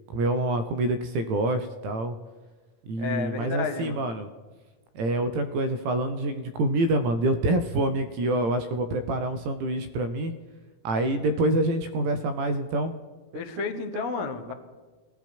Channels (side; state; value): left; late; 18 ms